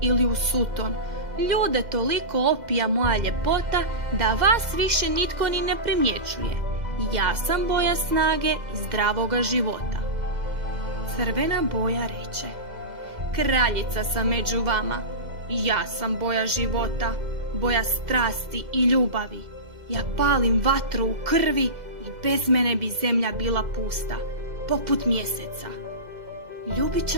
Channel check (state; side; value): late; left; 2.0 ms